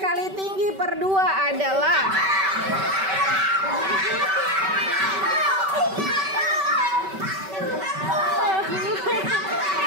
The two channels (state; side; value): late; left; 5.2 ms